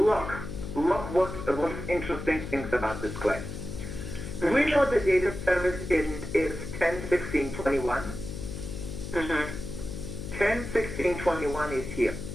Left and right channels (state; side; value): noise; left; hum, 8 dB below the sound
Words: what's interesting things about this claim. We know the date of service is 10/16/21. Mm-hmm. 10/16/21 is here.